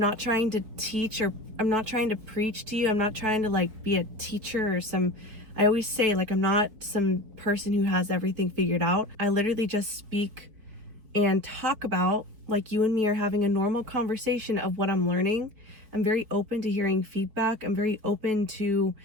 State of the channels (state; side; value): late; left; 4.8 ms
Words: trying to teach, or I'm not trying to preach to you. I'm not trying to be a teacher or I always say, I'm not some person who has everything figured out. I literally just speak and talk about, like you and me are having a normal conversation of what I'm learning. I'm very open to hearing feedback. I'm very open to,